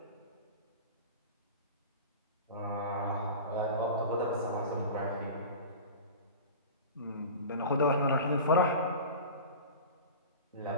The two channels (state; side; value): inverted; both; correlation -0.34